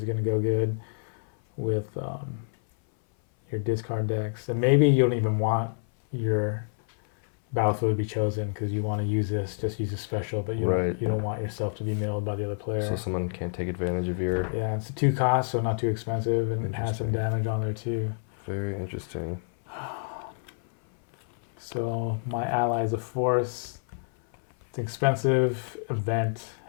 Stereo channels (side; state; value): right; silent; 57 dB below the other